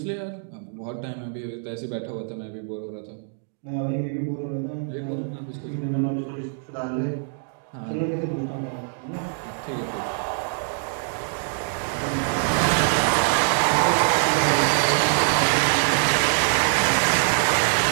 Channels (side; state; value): left; silent; digital silence